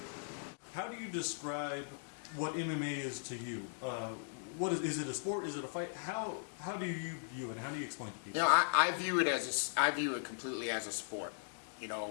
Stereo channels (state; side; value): silent; right; digital silence